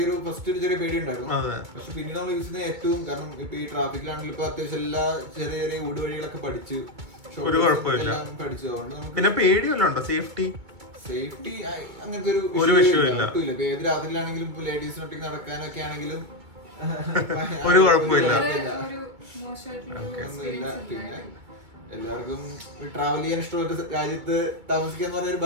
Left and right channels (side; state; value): left; late; 2.2 ms